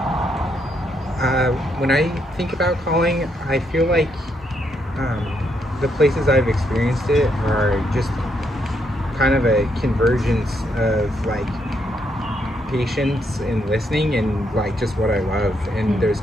When I think about calling, I feel like the places I've experienced it are just kind of a convergence of like patience and listening and like just what I love, and there's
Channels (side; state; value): both; normal; correlation 0.76